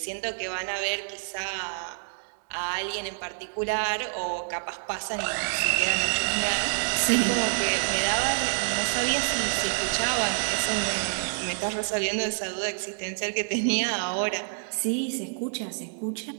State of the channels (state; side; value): silent; left; digital silence